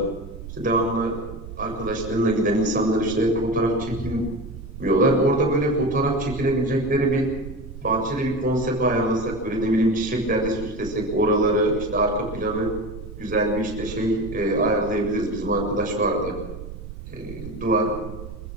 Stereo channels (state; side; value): noise; right; rumble, 12 dB below the sound